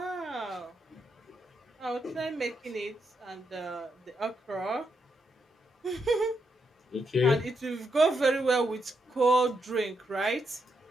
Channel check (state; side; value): normal; both; correlation 0.81